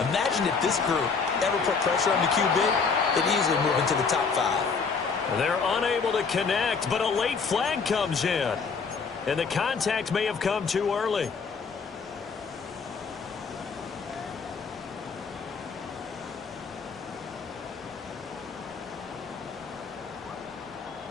Imagine if this group ever put pressure on the QB, they'd easily move into the top 5. They're unable to connect, but a late flag comes in. And the contact may have come too early.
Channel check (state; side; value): quieter; right; 5.2 dB